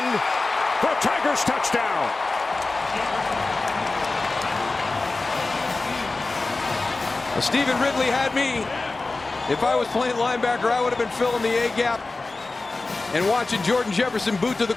for a Tigers touchdown. Well, Stephen Ridley had me. If I was playing linebacker, I would have been filling the A gap and watching Jordan Jefferson boot to the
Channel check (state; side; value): quieter; right; 3.4 dB